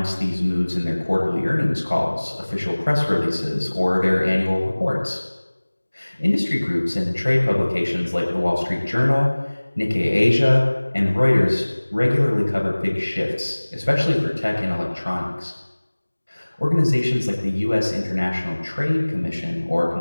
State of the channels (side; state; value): both; inverted; correlation -1.00